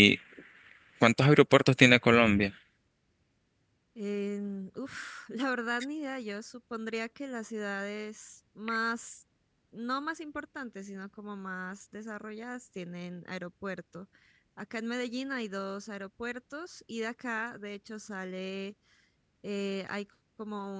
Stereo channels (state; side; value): identical; both; correlation 1.00